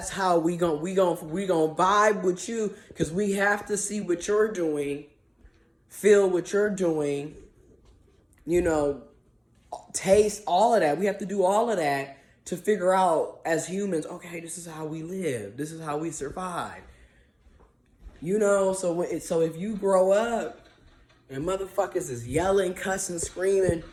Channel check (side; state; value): both; identical; correlation 1.00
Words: how we gon' vibe with you, because we have to see what you're doing, feel what you're doing, you know, taste all of that. We have to do all of that to figure out as humans, okay, this is how we live. This is how we survive. You know, so if you grow up and motherfuckers is yelling, cussing, screaming,